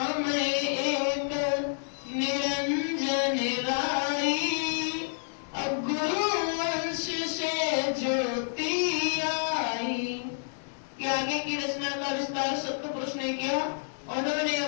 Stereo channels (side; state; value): right; silent; digital silence